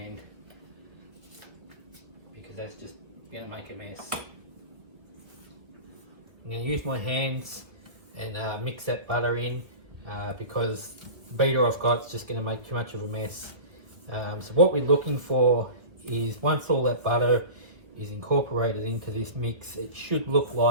because that's just going to make a mess. I'm going to use my hands and mix that butter in because the beater I've got is just going to make too much of a mess. So what we're looking for is once all that butter is incorporated into this mix, it should look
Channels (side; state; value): left; late; 1.3 ms